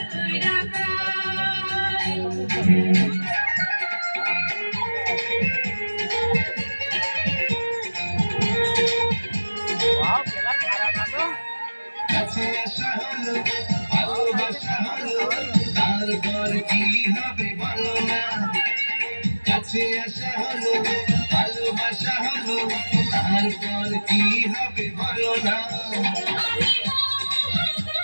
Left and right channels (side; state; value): both; inverted; correlation -1.00